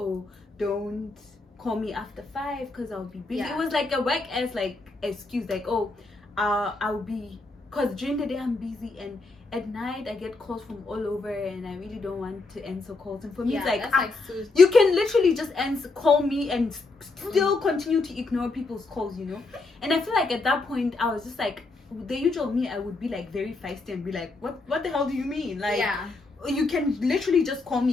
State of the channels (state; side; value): quieter; right; 3.5 dB